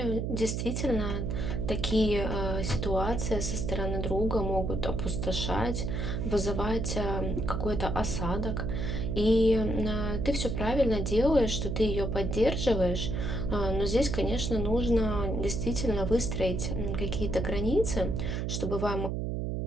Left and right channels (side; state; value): right; noise; hum, 1 dB below the sound